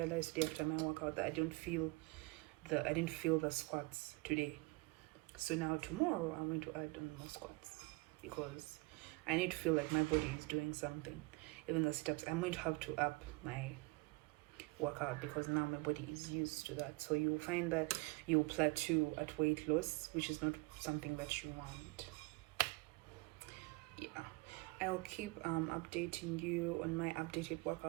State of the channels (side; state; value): left; quieter; 25.6 dB